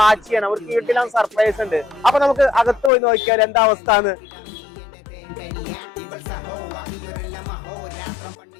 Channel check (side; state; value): right; drops out; at 2.9 s